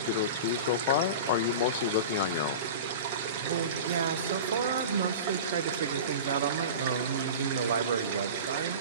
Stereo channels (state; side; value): inverted; both; correlation -0.32